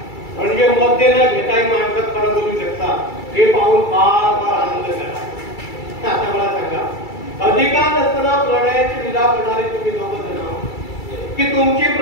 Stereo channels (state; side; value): late; right; 2.3 ms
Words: म्हणजे मध्ये न घेताही माणसात खरं बोलू शकता हे पाहून फार फार आनंद झाला. आता मला सांगा, अधिकार नसताना प्रणयाची लीला करणारे तुम्ही दोघं जण की तुमची